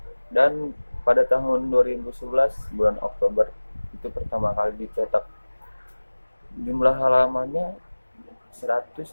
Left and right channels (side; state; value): both; inverted; correlation -1.00